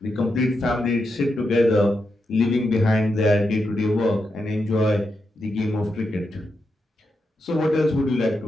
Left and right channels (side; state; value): both; normal; correlation 0.85